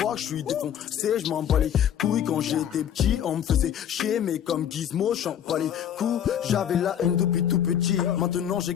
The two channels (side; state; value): right; quieter; 9.6 dB